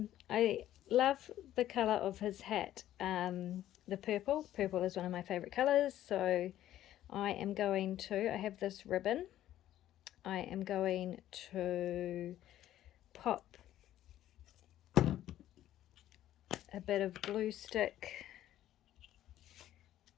love the colour of his hat, the purple. Purple is one of my favourite colours, so I am going to, I have this ribbon, I am going to pop a bit of glue stick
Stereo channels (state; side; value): quieter; right; 12.8 dB